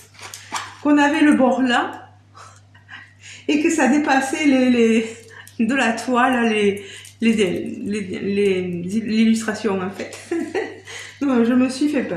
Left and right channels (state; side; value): identical; both; correlation 1.00